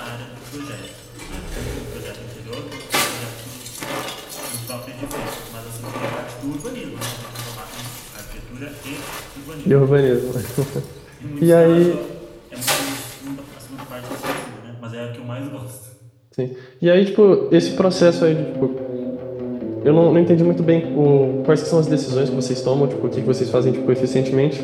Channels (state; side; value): identical; both; correlation 1.00